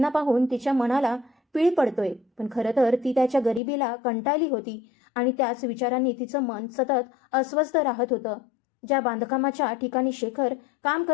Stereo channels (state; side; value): drops out; right; at 3.6 s